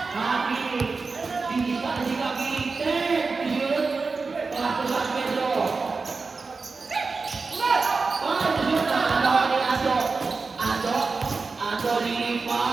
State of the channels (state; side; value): quieter; left; 4.3 dB